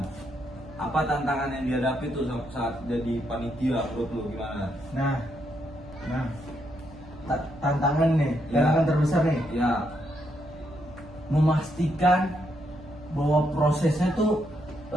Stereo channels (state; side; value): noise; right; hum, 20 dB below the sound